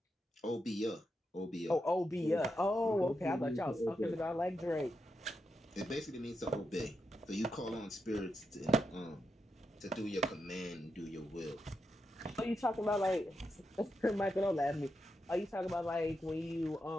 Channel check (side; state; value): both; normal; correlation 0.85